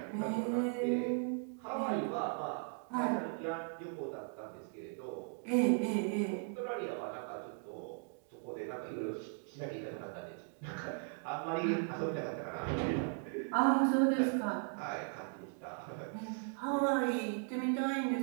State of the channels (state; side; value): silent; left; 53 dB below the other